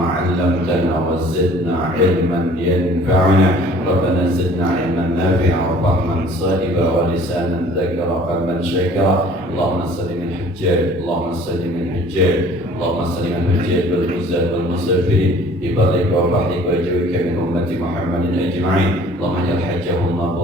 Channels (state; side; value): normal; both; correlation 0.52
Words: وزدنا علما ينفعنا ربنا زدنا علما نافعا وفهما صائبا ولسانا ذكرا قلبا شاكرا اللهم سلم الحجاج اللهم سلم الحجاج اللهم سلم الحجاج والغزاة والمسافرين ببرك وبحرك وجوك من أمة محمد أجمعين اللهم اجعل حجهم